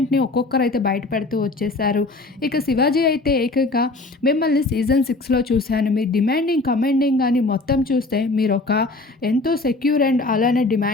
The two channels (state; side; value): quieter; right; 3.2 dB